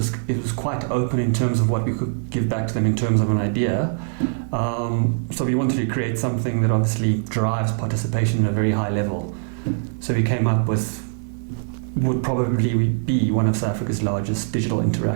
quite open in terms of what we could give back to them in terms of an idea. So we wanted to create something that obviously drives participation at a very high level. So we came up with would probably be one of South Africa's largest digital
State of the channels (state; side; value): silent; left; digital silence